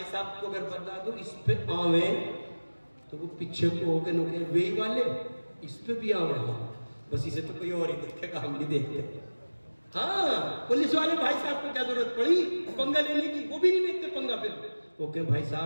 صاحب کو اگر بتا دو اس پہ آویں تو وہ پیچھے کو ہو کے نوکے وہی والے اس پہ بھی آویں. بس اسے تو کوئی اور ہی دیکھے گا، ہم نہیں دیکھتے. ہاں پولیس والے بھائی صاحب کو کیا ضرورت پڑی پنگا لینے کی؟ وہ بھی نہیں لیتے پنگا. پھر وہ کہ بھائی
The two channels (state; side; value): inverted; both; correlation -1.00